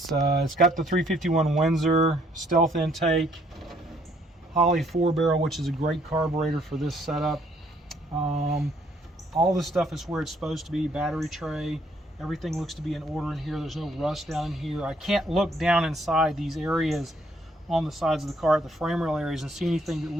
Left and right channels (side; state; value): both; normal; correlation 0.66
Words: got the 351 Windsor stealth intake, Holley 4-barrel, which is a great carburetor for this setup. All this stuff is where it's supposed to be. Battery tray, everything looks to be in order in here. There's no rust down in here. I can't look down inside these areas on the sides of the car at the frame rail areas and see anything that